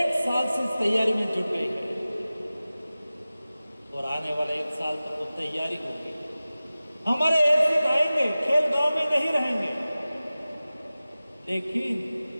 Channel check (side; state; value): both; inverted; correlation -0.97